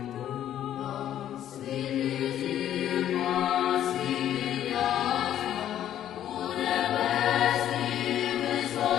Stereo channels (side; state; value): right; quieter; 11.2 dB